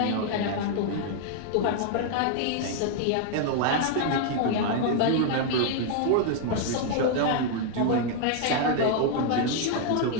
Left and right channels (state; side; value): different; both; correlation 0.00